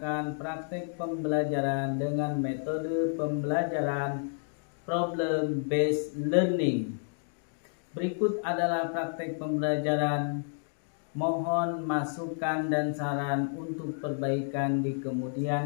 praktek pembelajaran dengan metode pembelajaran problem based learning. Berikut adalah praktek pembelajaran. Mohon masukan dan saran untuk perbaikan di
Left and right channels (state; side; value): silent; right; 58 dB below the other